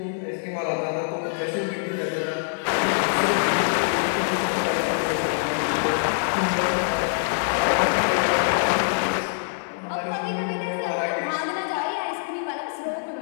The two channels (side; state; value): right; silent; 62 dB below the other